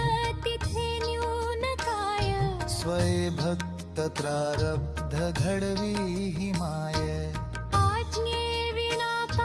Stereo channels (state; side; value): identical; both; correlation 1.00